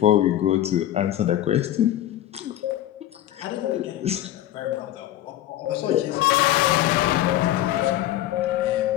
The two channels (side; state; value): right; quieter; 13.3 dB